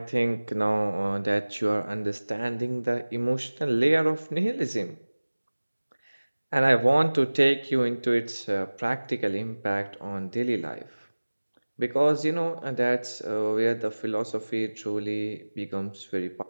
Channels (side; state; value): both; inverted; correlation -1.00